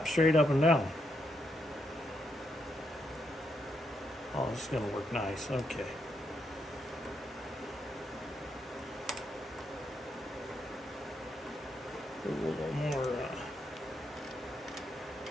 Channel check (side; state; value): both; normal; correlation 0.79